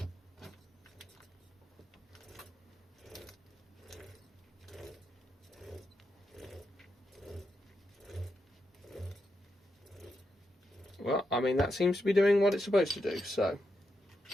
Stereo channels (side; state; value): both; normal; correlation 0.84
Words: Well, I mean, that seems to be doing what it's supposed to do, so